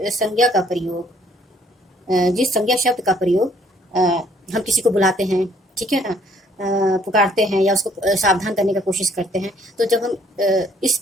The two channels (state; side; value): normal; both; correlation 0.62